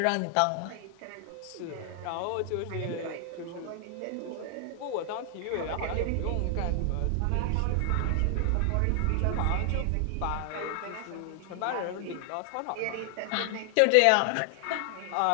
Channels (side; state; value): both; different; correlation 0.00